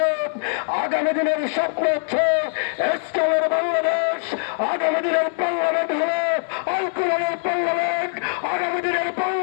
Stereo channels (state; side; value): silent; right; digital silence